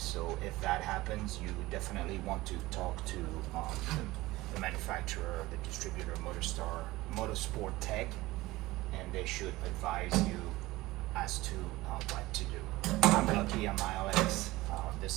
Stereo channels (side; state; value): left; quieter; 19.1 dB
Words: if that happens, you definitely want to talk to the manufacturer, the distributor, Motorsport Tech, and they should advise you as to what to do. I'm lucky on my LX.